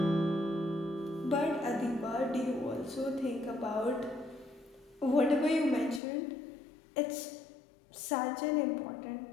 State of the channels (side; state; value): right; drops out; at 6.0 s